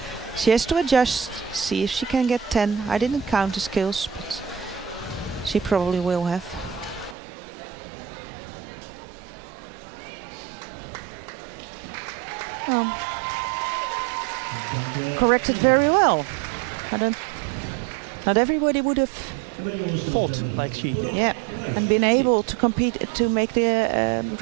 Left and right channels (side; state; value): left; drops out; at 7.2 s